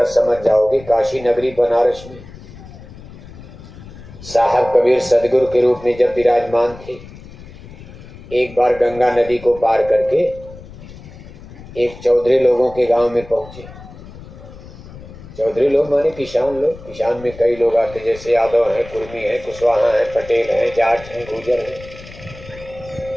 समझ जाओगे। काशी नगरी बनारस में साहब कबीर सदगुरु के रूप में जब विराजमान थे, एक बार गंगा नदी को पार करके एक चौधरी लोगों के गांव में पहुंचे। चौधरी लोग माने किसान लोग। किसान में कई लोग आते, जैसे यादव हैं, कुर्मी हैं, कुशवाहा हैं, पटेल हैं, जाट हैं, गुर्जर हैं,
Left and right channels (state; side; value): noise; left; rumble, 17 dB below the sound